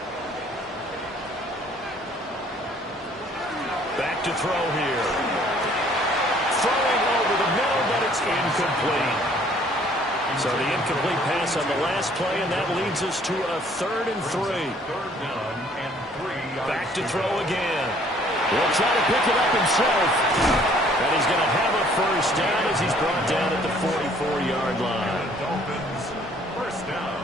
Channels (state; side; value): normal; both; correlation 0.59